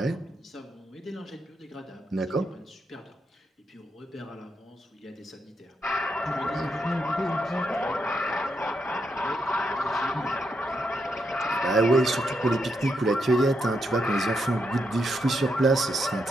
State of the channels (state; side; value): normal; both; correlation 0.81